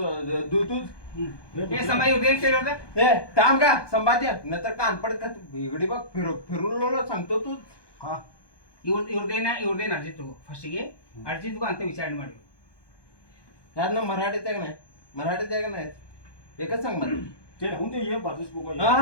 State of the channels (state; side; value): late; right; 1.2 ms